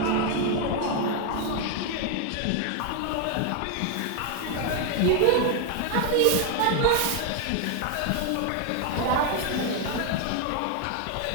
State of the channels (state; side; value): different; both; correlation 0.00